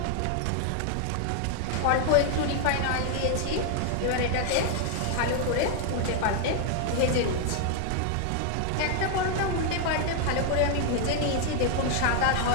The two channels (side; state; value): both; different; correlation 0.00